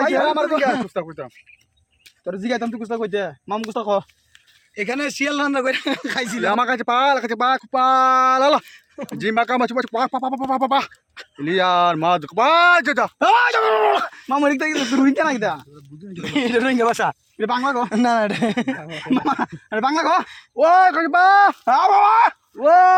ভাই আমার দিকে তোর জিগাইতাম তুই কুস্তা কইতে মাম কুস্তা কো এখানে শিয়াল রান্না করে খাইছিল আমার কাছে পা পালা জিমা কাম আছে পা পা পা পা পা লিয়ার মা পা যা মাম এদিক থেকে তুই রুইন কেন কিটা এটা রোহিঙ্গা ভাষা এটা বাংলা কো না না মামা এটা বাংলা কো ওই কাছে পা বাবা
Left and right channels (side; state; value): both; identical; correlation 1.00